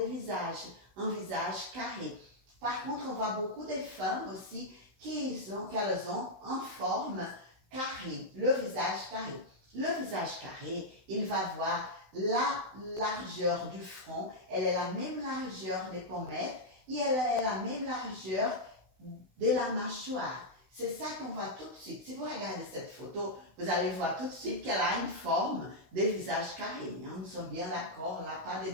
visage, un visage carré. Par contre, on voit beaucoup de femmes aussi qu'elles ont en forme carré, le visage carré. Le visage carré, il va avoir la largeur du front, elle est la même largeur des pommettes et elle est la même largeur de la mâchoire. C'est ça qu'on voit tout de suite. Si vous regardez cette photo, vous allez voir tout de suite qu'elle a une forme de visage carré. Hein? Nous sommes bien d'accord, là, pas de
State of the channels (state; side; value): late; left; 16 ms